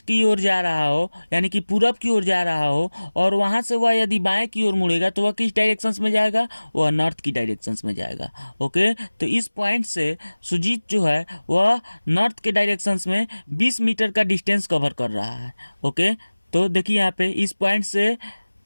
की ओर जा रहा हो, यानी कि पूरब की ओर जा रहा हो और वहाँ से वह यदि बाएं की ओर मुड़ेगा तो वह किस डायरेक्शंस में जाएगा, वह नॉर्थ की डायरेक्शंस में जाएगा। ओके, तो इस पॉइंट से सुजीत जो है वह नॉर्थ के डायरेक्शंस में 20 मीटर का डिस्टेंस कवर कर रहा है। ओके, तो देखिए यहाँ पे इस पॉइंट से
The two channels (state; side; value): inverted; both; correlation -1.00